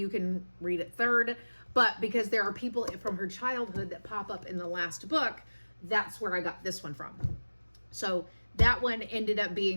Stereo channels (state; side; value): inverted; both; correlation -1.00